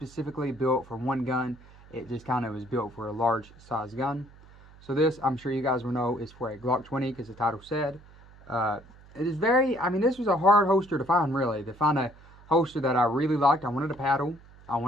built for one gun. It just kind of was built for a large size gun. So this, I'm sure you guys will know, is for a Glock 20, because the title said. It is very, I mean, this was a hard holster to find, really. To find a holster that I really liked. I wanted a paddle, I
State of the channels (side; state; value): right; noise; hum, 23 dB below the sound